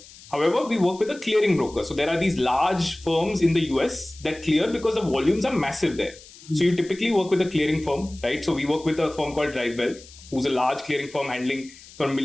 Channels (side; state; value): left; noise; hiss, 21 dB below the sound